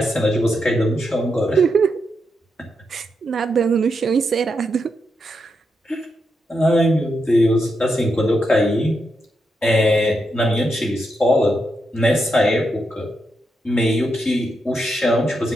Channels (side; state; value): both; normal; correlation 0.83